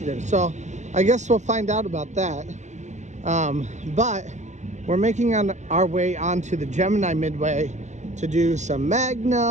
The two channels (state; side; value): late; left; 0.34 ms